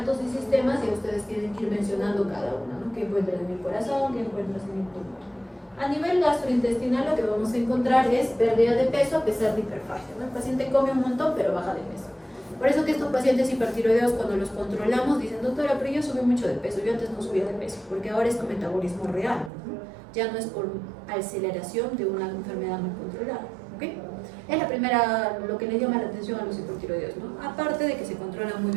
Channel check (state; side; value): drops out; left; at 19.5 s